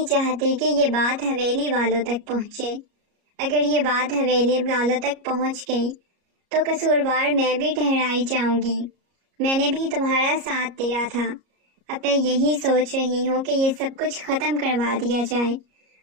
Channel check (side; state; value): left; late; 33 ms